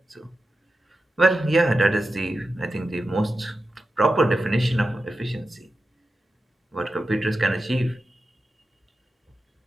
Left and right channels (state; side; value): normal; both; correlation 0.91